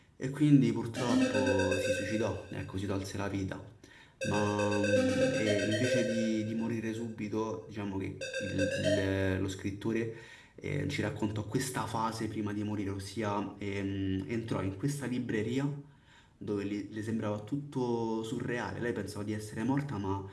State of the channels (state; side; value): identical; both; correlation 1.00